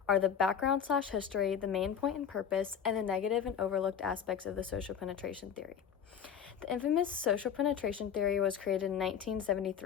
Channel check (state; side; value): quieter; right; 8.1 dB